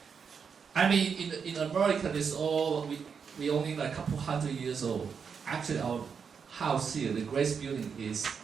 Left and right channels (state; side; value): quieter; left; 6.3 dB